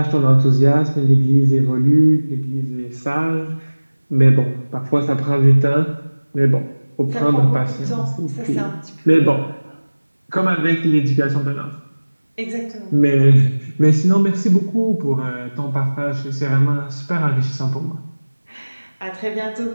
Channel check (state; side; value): inverted; both; correlation -1.00